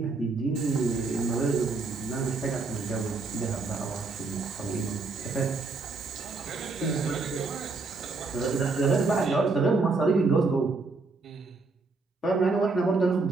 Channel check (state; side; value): quieter; left; 3.9 dB